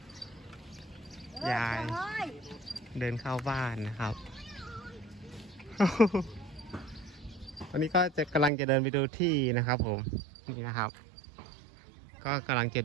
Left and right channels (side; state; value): left; drops out; at 8.5 s